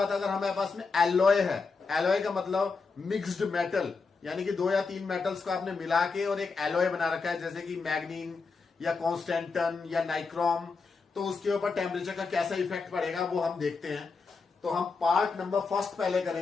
अगर हमारे पास में एलॉय है, एलॉय का मतलब मिक्स्ड मेटल, यानी कि 2 या 3 मेटल्स को आपने मिला के और एक एलॉय बना रखा है, जैसे कि मैग्नीन या कॉन्स्टेंटन या नाइक्रोम, तो उसके ऊपर टेम्परेचर का कैसा इफेक्ट पड़ेगा वो हम देखते हैं। तो हम पार्ट नंबर 1 पहले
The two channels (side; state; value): right; quieter; 4.6 dB